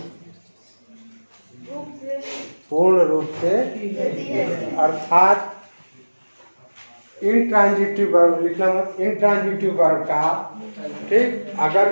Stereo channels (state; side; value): inverted; both; correlation -1.00